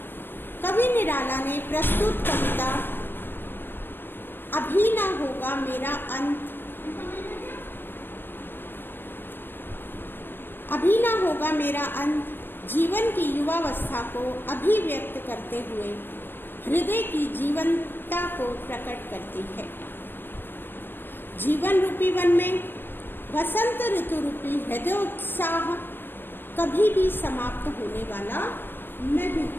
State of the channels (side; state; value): right; late; 0.097 ms